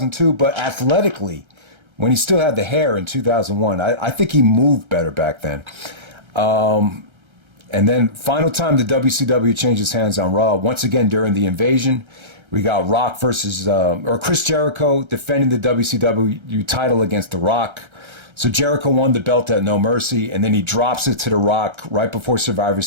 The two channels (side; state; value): left; late; 1.3 ms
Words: but athletically, when he still had the hair in 2001, I think he moved better back then. And then final time the WCW changes hands on Raw, once again during the Invasion. We got Rock versus, or Chris Jericho defending the WCW title against The Rock. So Jericho won the belt at No Mercy, and then he drops it to The Rock right before Survivor